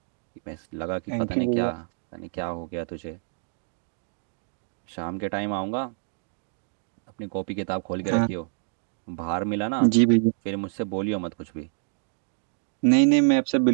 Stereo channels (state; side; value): silent; left; digital silence